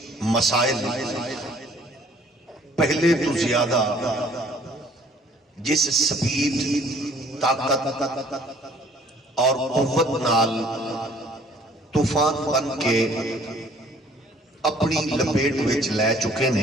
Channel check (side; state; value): both; normal; correlation 0.57